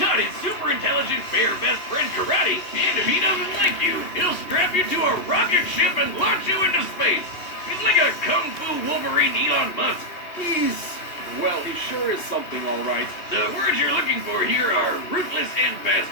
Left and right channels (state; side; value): late; right; 2.9 ms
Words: his super intelligent bear best friend karate, and if he doesn't like you, he'll strap you to a rocket ship and launch you into space. He's like a kung fu Wolverine Elon Musk. Well, he sure is something, all right. The words you're looking for here are ruthless and